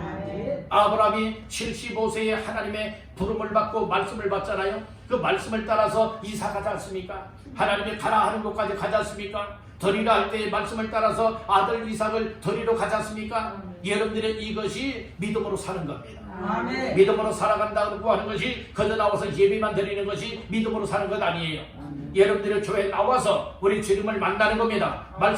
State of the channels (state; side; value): identical; both; correlation 1.00